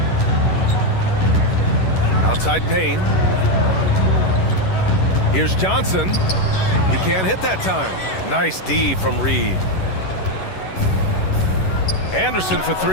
Outside Payne. Here's Johnson. He can't hit that time. Nice D from Reed. Anderson for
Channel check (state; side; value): late; right; 11 ms